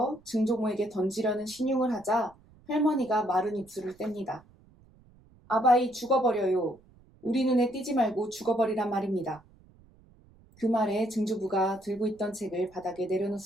증조모에게 던지려는 신용을 하자 할머니가 마른 입술을 뗍니다. 아바이 죽어버려요. 우리 눈에 띄지 말고 죽어버리란 말입니다. 그 말에 증조부가 들고 있던 책을 바닥에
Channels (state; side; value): noise; right; rumble, 28 dB below the sound